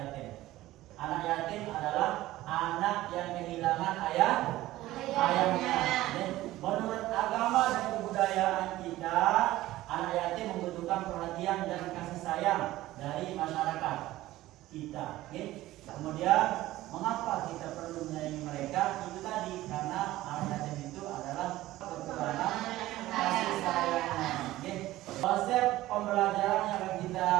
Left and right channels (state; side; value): quieter; left; 16.2 dB